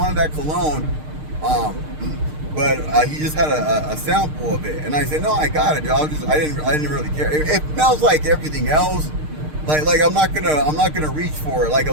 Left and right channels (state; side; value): late; left; 6.6 ms